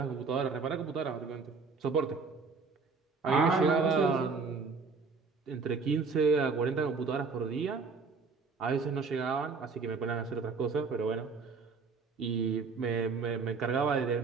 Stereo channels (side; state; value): left; quieter; 4.7 dB